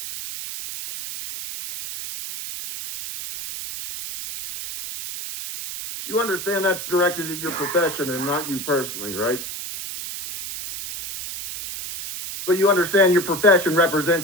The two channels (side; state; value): right; noise; hiss, 8 dB below the sound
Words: You understand that's directed at your profession and not you personally, right? But you understand your profession